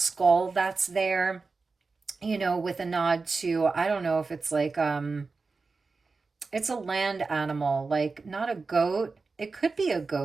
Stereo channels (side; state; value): left; quieter; 4.2 dB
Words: that's there, with a nod to, I don't know if it's like, it's a land animal, like not a goat. It could be a